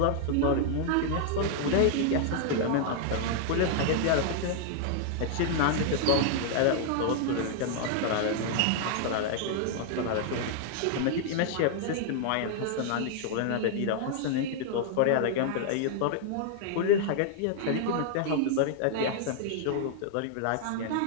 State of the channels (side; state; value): both; different; correlation -0.01